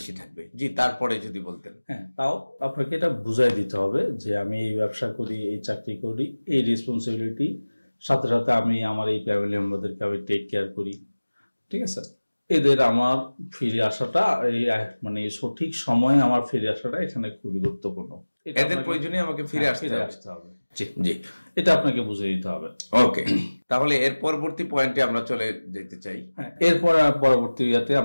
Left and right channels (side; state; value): both; inverted; correlation -1.00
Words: থাকবে। জি, তারপরে যদি বলতেন। হ্যাঁ, তাও আপনাকে এটা বুঝাই দিতে হবে যে আমি এই ব্যবসা করি, এই চাকরি করি, এই রেসপন্সিবিলিটি সাথে সাথে আমি আমার এই ফ্যামিলি মেম্বারদেরকে আমি টেক কেয়ার করি, ঠিক আছে। এদের আমার ফিরে আসাটা মানে সঠিক সময়ে আমার ফিরে আসাটা এখানে খুবই গুরুত্বপূর্ণ। এদের প্রয়োজনে আমাকে ফিরে আসতে হবে। জি, এটা আপনাকে বুঝিয়ে দিতে হবে। ওকে, তাহলে এর পরবর্তী পয়েন্টে আমরা চলে যেতে চাই। এরপর পরবর্তী ইয়াতে